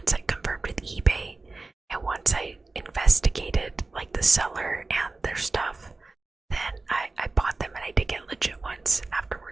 I confirmed with eBay and once I investigated like the seller and their stuff, then I bought them, and I did get legit ones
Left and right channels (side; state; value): left; quieter; 3.5 dB